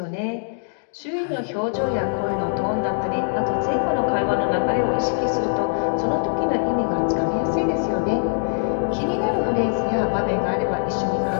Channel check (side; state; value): right; silent; digital silence